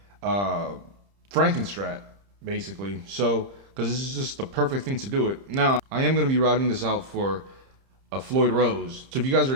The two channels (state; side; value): late; left; 30 ms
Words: Frankenstrat, basically. So, because this is just the perfect thing to do it. Now, I am going to be routing this out for a Floyd Rose. So if you guys are